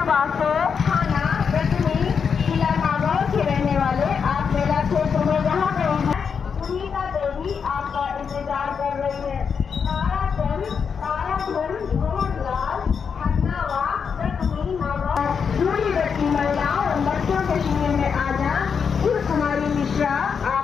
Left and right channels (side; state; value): right; quieter; 6.4 dB